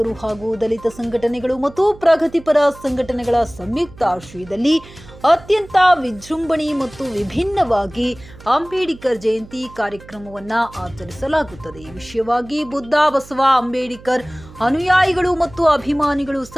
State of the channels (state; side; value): noise; right; hum, 20 dB below the sound